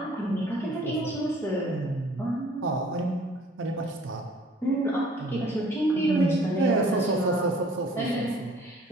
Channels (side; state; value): both; normal; correlation 0.54